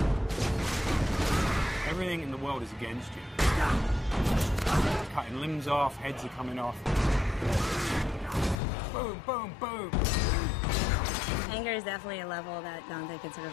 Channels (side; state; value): right; drops out; at 8.6 s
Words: Everything in the world is against you. Cutting limbs off, heads are coming off. Boom, boom, boom. Anger is definitely a level that Dante can sort